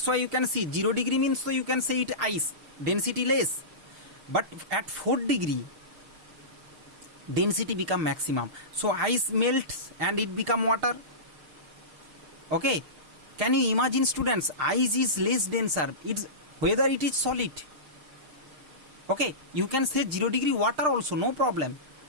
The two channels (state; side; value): late; left; 6.5 ms